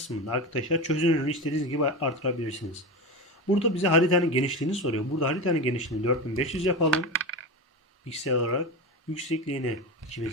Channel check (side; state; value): both; normal; correlation 0.22